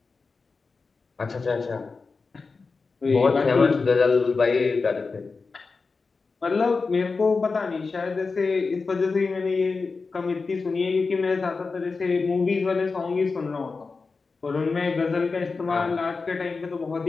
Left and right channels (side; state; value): right; quieter; 4.3 dB